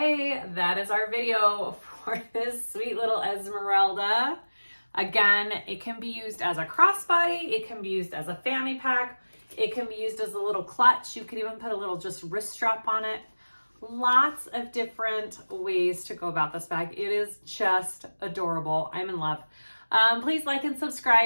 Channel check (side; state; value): both; inverted; correlation -1.00